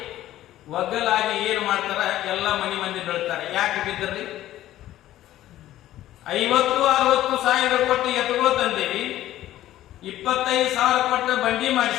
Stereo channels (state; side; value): quieter; right; 13.9 dB